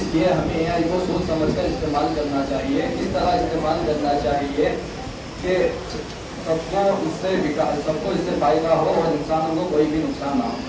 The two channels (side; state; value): both; identical; correlation 1.00